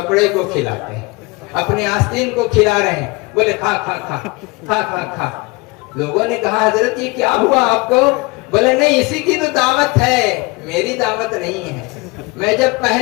को खिलाते हैं अपने आस्तीन को खिला रहे हैं बोले खा खा खा खा खा खा लोगों ने कहा हजरत ये क्या हुआ आपको बोले नहीं इसी की तो दावत है मेरी दावत नहीं है मैं जब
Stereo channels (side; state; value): right; quieter; 26.0 dB